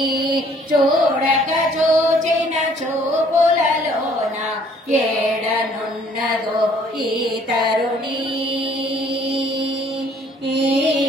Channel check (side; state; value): both; normal; correlation 0.59